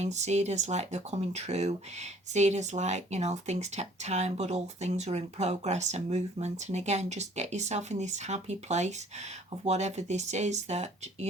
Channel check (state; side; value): normal; both; correlation 0.56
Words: see it as like they're coming true, see it as like, you know, things take time, but all things are in progress and movement. And again, just get yourself in this happy place of whatever this is that,